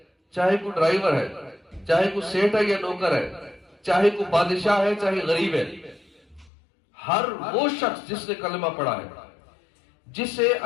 چاہے کوئی ڈرائیور ہے، چاہے کوئی سیٹ ہے یا نوکر ہے، چاہے کوئی بادشاہ ہے چاہے غریب ہے، ہر وہ شخص جس نے کلمہ پڑھا ہے، جسے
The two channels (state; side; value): drops out; right; at 6.5 s